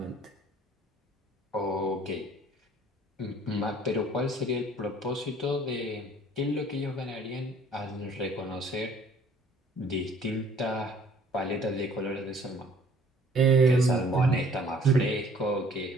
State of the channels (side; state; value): both; normal; correlation 0.56